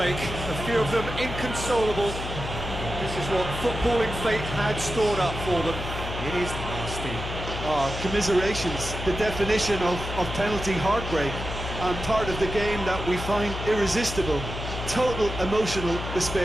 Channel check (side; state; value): left; noise; hum, 7 dB below the sound